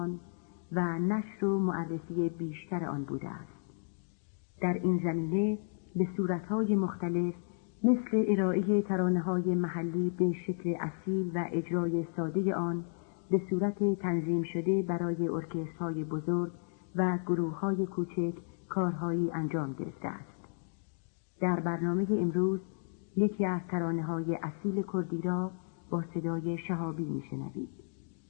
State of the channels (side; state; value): right; silent; digital silence